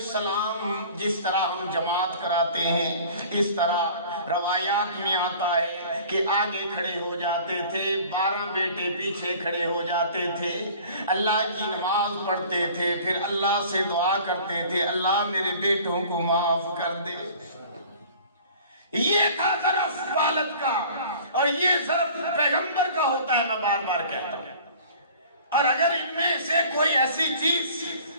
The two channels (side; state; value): both; inverted; correlation -0.47